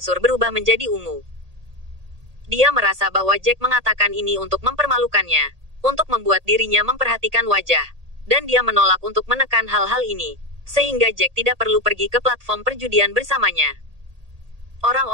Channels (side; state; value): left; late; 1.8 ms